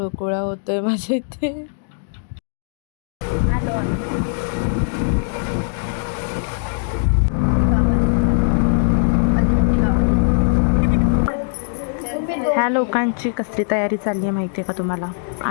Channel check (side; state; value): right; silent; digital silence